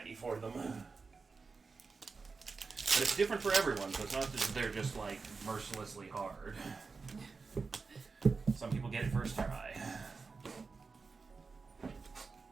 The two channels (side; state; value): left; quieter; 4.5 dB